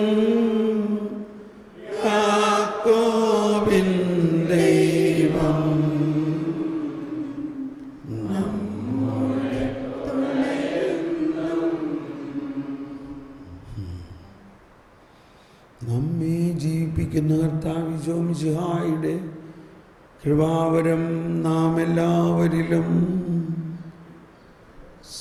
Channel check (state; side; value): identical; both; correlation 1.00